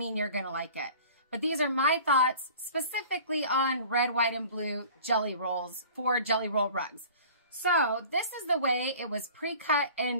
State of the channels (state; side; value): inverted; both; correlation -0.45